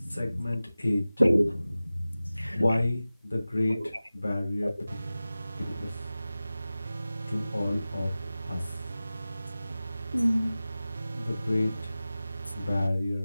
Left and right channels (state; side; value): inverted; both; correlation -0.96